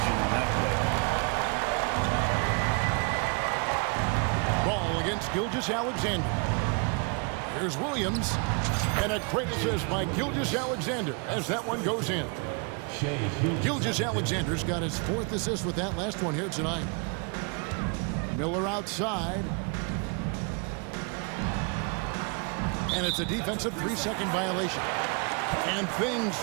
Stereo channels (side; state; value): left; quieter; 35.4 dB